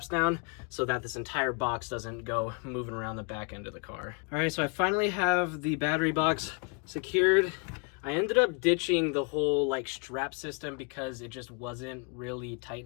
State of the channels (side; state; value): right; quieter; 35.3 dB